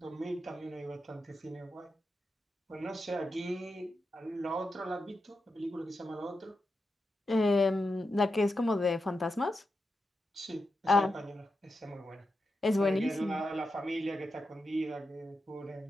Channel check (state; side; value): normal; both; correlation 0.88